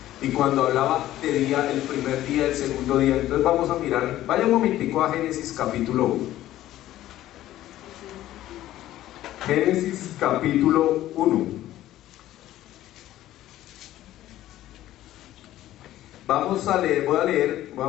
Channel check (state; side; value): quieter; right; 14.0 dB